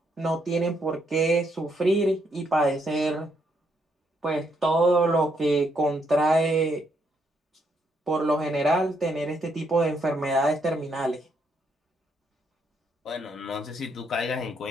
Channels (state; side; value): normal; both; correlation 0.75